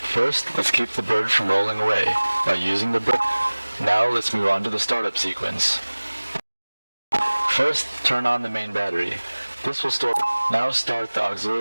First, let's keep the bird from rolling away by using the brake. Now let's move on to the startup sequence. First, turn on the main battery. This will store. Now start the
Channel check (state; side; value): inverted; both; correlation -1.00